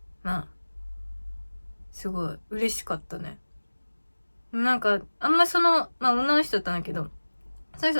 まあすごい嬉しかったね。なんかあんま女の人だったんだけど、その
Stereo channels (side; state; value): both; inverted; correlation -1.00